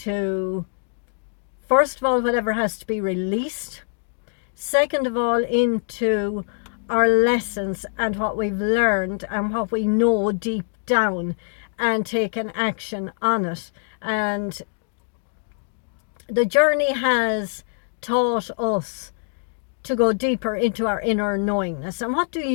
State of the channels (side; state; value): right; silent; digital silence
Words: first of all, whatever has to be released. Second of all, into our lessons and what we've learned and what we know deep down, and taken action on it. And the journey has taught us to go deeper into our inner knowingness. And what do